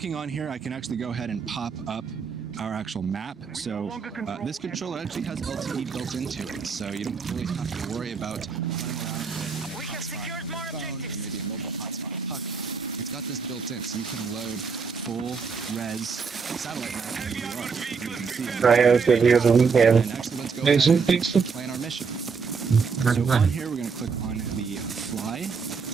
on here, I can actually go ahead and pop up our actual map. So this controller actually has LTE built into it, so you don't really have to worry about running around with a hotspot on your phone or maybe a mobile hotspot puck. It's got this built in, so you can load full res satellite map wherever you are. You can see that. And actually, let's go ahead and plan our mission. So on here, we're going to click on the fly,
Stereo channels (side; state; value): left; quieter; 5.4 dB